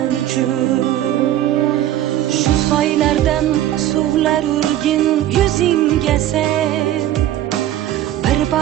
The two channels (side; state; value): left; quieter; 12.7 dB